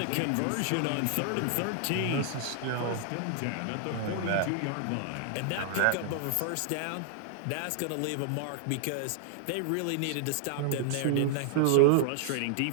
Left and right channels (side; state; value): both; different; correlation 0.00